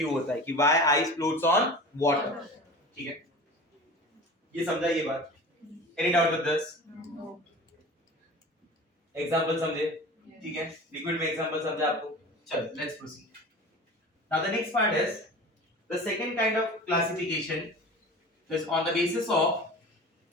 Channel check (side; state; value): both; normal; correlation 0.36